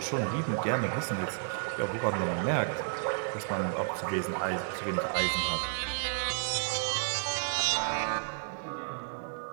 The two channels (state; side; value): silent; left; digital silence